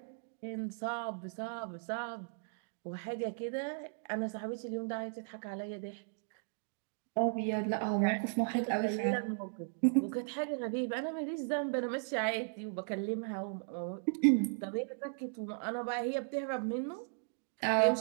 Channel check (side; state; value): left; silent; digital silence